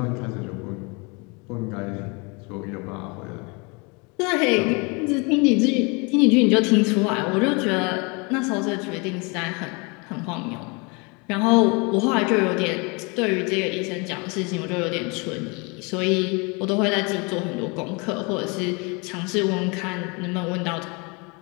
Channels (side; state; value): right; quieter; 30.1 dB